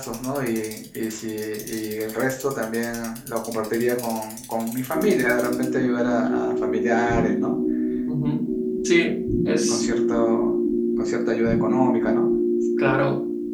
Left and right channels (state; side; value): identical; both; correlation 1.00